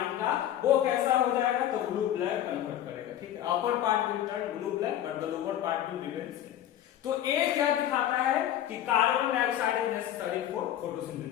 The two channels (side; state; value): right; quieter; 11.7 dB